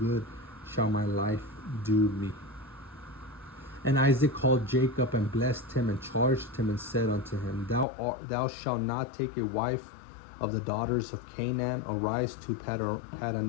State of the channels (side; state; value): right; drops out; at 7.9 s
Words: shall my life do me. And Isaac called Jacob and blessed him and charged him and said unto him, Thou shalt not take a wife of the daughters of Canaan. Arise to